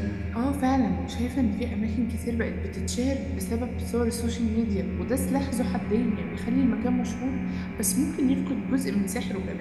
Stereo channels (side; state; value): both; identical; correlation 1.00